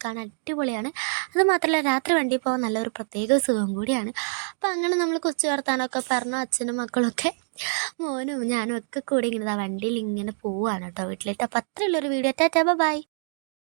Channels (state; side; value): silent; left; 61 dB below the other